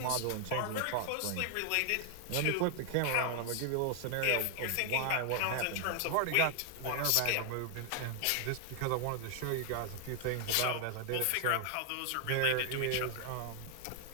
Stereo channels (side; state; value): both; different; correlation 0.00